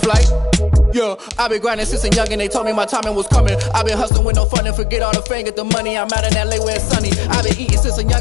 Yeah, I been grinding since a youngin', they told me my timing was coming. I been hustling with no fun and forget all the fame, get the money. I'm out in LA where it's sunny. I been eating since a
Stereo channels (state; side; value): drops out; right; at 4.1 s